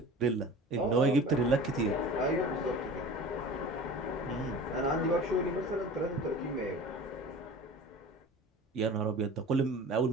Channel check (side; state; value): both; normal; correlation 0.39